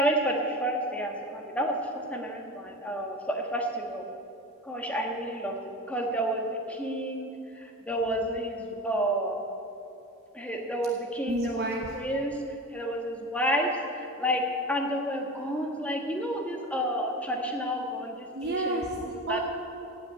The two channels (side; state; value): both; normal; correlation 0.30